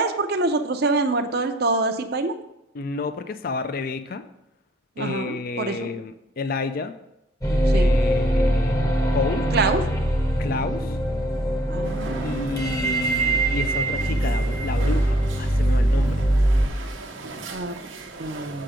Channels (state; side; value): normal; both; correlation 0.60